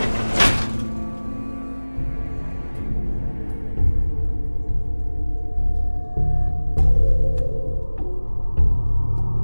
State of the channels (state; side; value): inverted; both; correlation -1.00